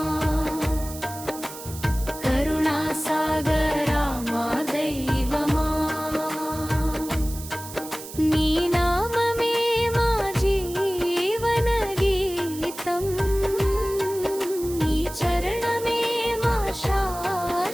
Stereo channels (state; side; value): noise; right; hiss, 13 dB below the sound